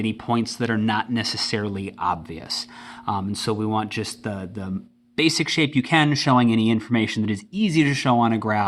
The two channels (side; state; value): both; identical; correlation 1.00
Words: points that are not necessarily obvious. And so we want just the basic shape you can, showing any information that is easy to show on a